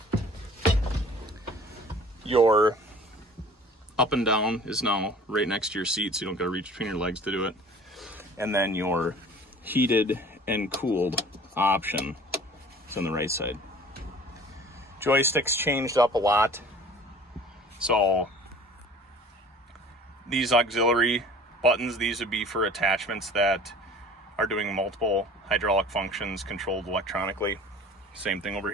your up and down is now right next to your seat, so you don't gotta reach between your legs to do it. And then your heated and cooled option is on the right side. Joysticks changed up a lot. So these auxiliary buttons, these would be for attachments that are doing multiple hydraulic functions controlled electronically. Same thing over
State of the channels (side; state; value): both; normal; correlation 0.46